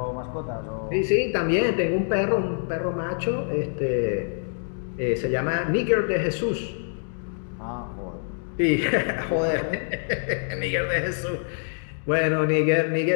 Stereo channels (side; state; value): right; silent; digital silence